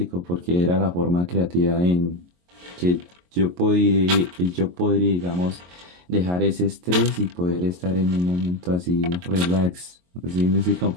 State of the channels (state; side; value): late; left; 22 ms